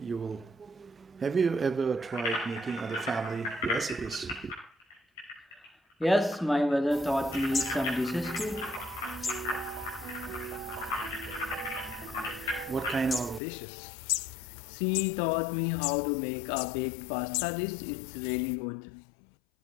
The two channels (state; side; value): drops out; right; at 13.4 s